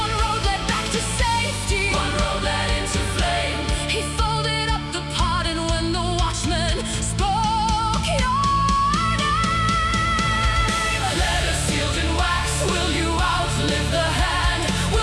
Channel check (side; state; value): both; identical; correlation 1.00